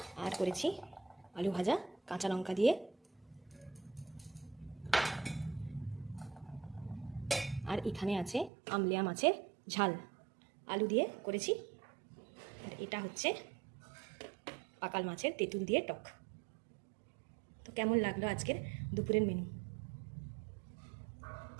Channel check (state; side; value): drops out; left; at 8.5 s